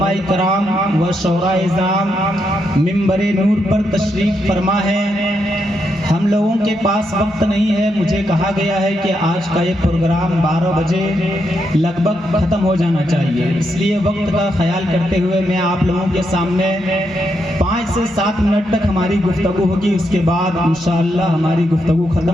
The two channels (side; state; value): both; normal; correlation 0.81